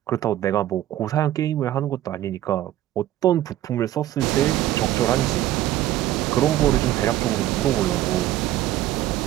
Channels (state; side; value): quieter; left; 13.7 dB